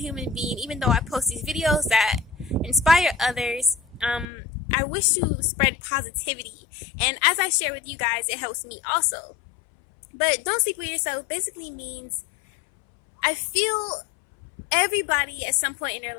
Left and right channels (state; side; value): drops out; right; at 4.2 s